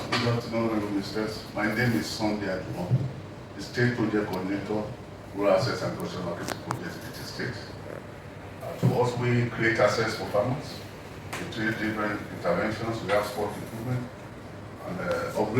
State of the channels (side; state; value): both; identical; correlation 1.00